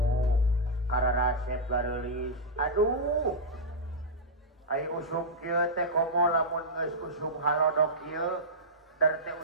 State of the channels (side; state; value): both; normal; correlation -0.09